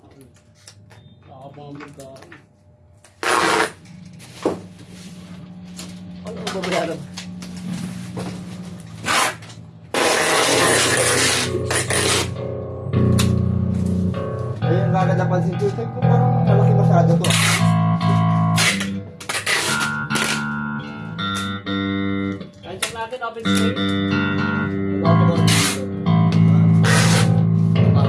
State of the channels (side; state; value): both; identical; correlation 1.00